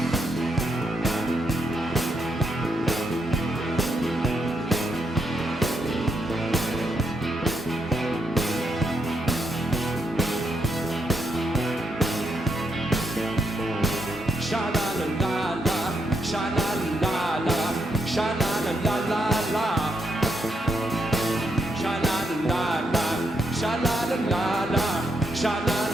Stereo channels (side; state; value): both; normal; correlation 0.78